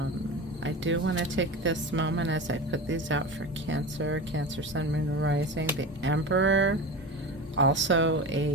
I do want to take this moment as I put these out for Cancer, Cancer, Sun, Moon, Rising. The Emperor, also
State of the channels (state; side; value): normal; both; correlation 0.28